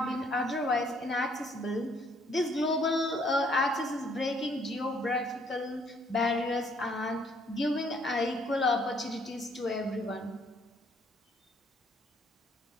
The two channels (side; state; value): both; normal; correlation 0.65